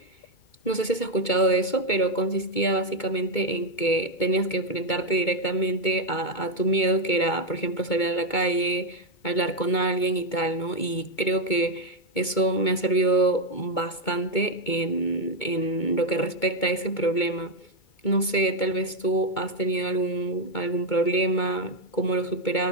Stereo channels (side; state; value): right; late; 2.2 ms